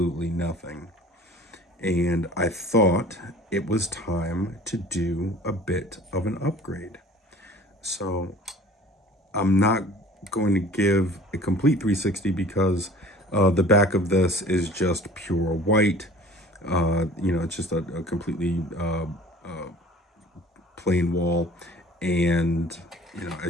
nothing. And I thought it was time to do a bit of an upgrade. So I'm not going to give a complete 360 because the back of this is just pure white. It's just a completely plain wall, and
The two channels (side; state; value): both; normal; correlation 0.46